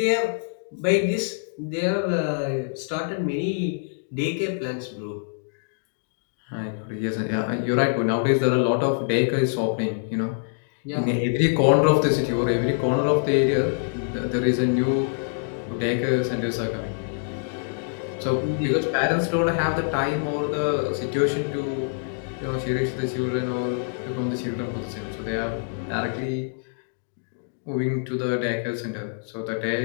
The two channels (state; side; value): silent; right; digital silence